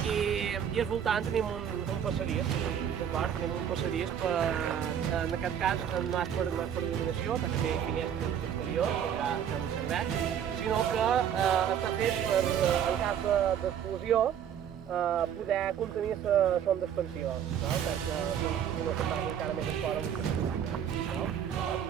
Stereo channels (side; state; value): left; quieter; 9.0 dB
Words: i al voltant tenim un passadís, d'acord? Tenim un passadís en aquest cas no és per il·luminació, perquè té finestres exteriors, que ja no serveix, sinó que està fet per, en cas d'explosió, poder contenir la sonda expansiva, perquè no se'n vagi encara més enfora.